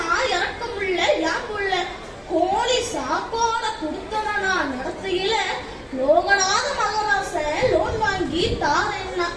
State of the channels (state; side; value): identical; both; correlation 1.00